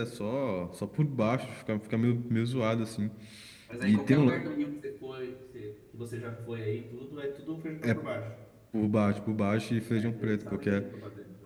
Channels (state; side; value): identical; both; correlation 1.00